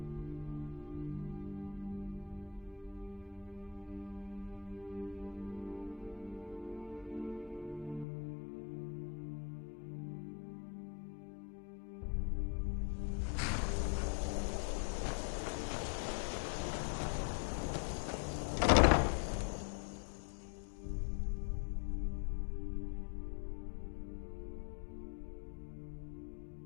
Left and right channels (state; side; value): drops out; right; at 8.1 s